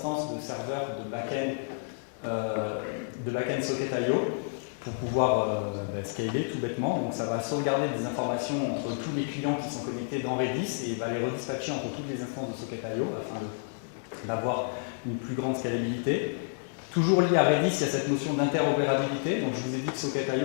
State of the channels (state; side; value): silent; right; 58 dB below the other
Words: de serveurs de back-end Socket.io pour pouvoir scaler tout bêtement. Donc ça va sauvegarder des informations entre tous les clients qui sont connectés dans Redis et va les redispatcher entre toutes les instances de Socket.io afin d'avoir une plus grande scalabilité. Toujours lié à Redis, il y a cette notion d'interopérabilité. Donc je vous ai dit que